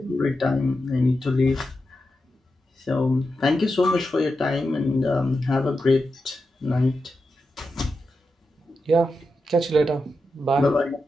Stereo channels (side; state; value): both; normal; correlation 0.89